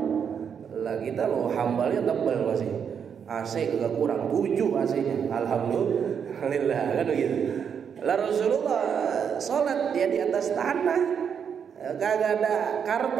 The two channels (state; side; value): quieter; left; 7.4 dB